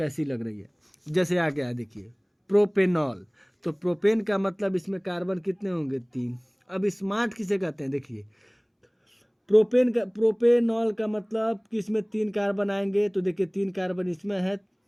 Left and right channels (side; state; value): both; identical; correlation 1.00